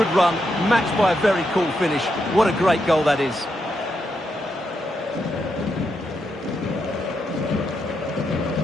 run, matched by a very cool finish. What a great goal that is.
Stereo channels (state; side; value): normal; both; correlation 0.82